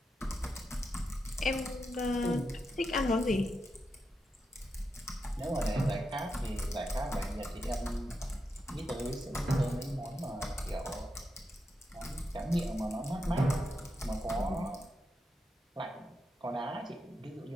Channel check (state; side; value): normal; both; correlation 0.86